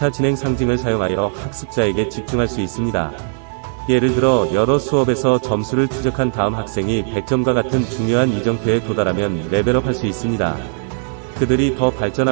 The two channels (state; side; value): silent; left; digital silence